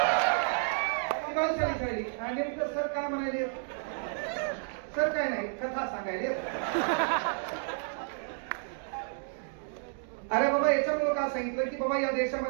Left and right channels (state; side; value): silent; left; digital silence